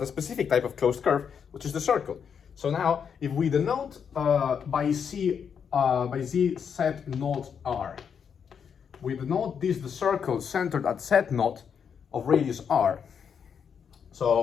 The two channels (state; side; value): quieter; right; 7.1 dB